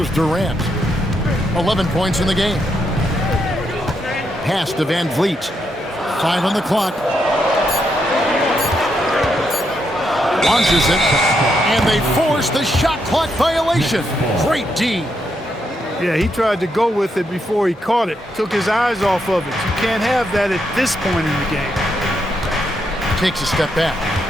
Durant. 11 points in the game. Pass to Van Vliet. 5 on the clock. Launches it. And they force the shot clock violation. Great D. Yeah, he tried to go with it before he caught it. Took his eyes off of it. You can't have that at this point in the game. Takes a step back.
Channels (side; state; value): both; normal; correlation 0.79